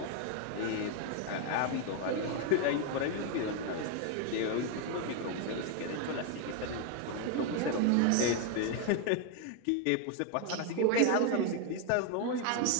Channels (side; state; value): both; different; correlation 0.00